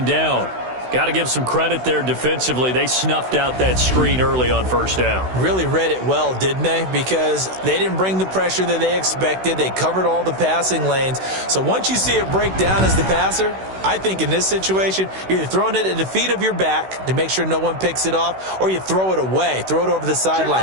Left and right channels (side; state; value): left; late; 16 ms